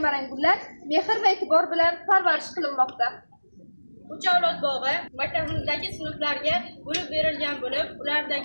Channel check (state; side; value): inverted; both; correlation -1.00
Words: gullar mehr va e'tibor bilan parvarish qilinmoqda. Uch avlod bog'i maktabimizdagi sinflarga bo'lib berilgan bo'lib,